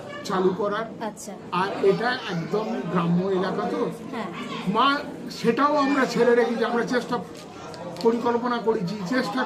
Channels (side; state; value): both; identical; correlation 1.00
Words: চালু করার। আচ্ছা। আর এটা একদম গ্রাম্য এলাকা, তো হ্যাঁ মা সেটাও আমরা ছেড়ে রেখেছি। আমরা পরিকল্পনা করেছি, চেষ্টা